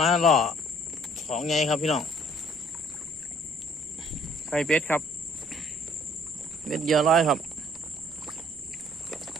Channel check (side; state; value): both; normal; correlation 0.59